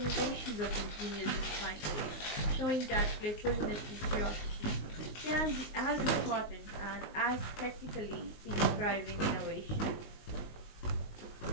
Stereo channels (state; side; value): late; right; 19 ms